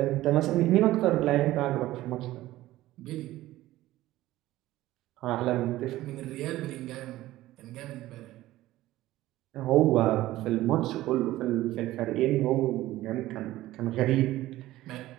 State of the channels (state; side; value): quieter; left; 16.1 dB